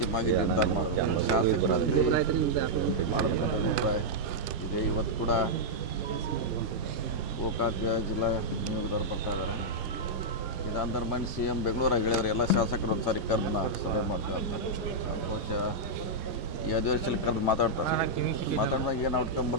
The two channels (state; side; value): normal; both; correlation -0.07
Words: ನಿರ್ಧಾರ ಮಾಡ್ತಾರೆ. ಶಾಸಕರ ಮಾಡಬೇಕಂತ ಅಭಿಪ್ರಾಯ ಇದೆ. ಇವತ್ತು ಕೂಡ ಗೋಕಾಕ್ ಜಿಲ್ಲಾ ನಿಯೋಗದವ್ರು ಬರ್ತಾ ಇದ್ದಾರೆ. ಇದಾಂತರ ಬಂದು ಸಿ ಎಂ ಬೆಂಗಳೂರಾಗ ಹೇಳಿದ್ರು ಎಲ್ಲ ಶಾಸಕರು ಒಂದು ಸಾರಿ ಕರೆದು ನಾವು ಸಭೆ ಮಾಡ್ತಾರೆ ಅಂತ. ಬಹುಶಃ ಈ ಅಧಿವೇಶನ ಕರೆದು ಮಾತಾಡಿದಾಗ ಏನು ಔಟ್ಕಮ್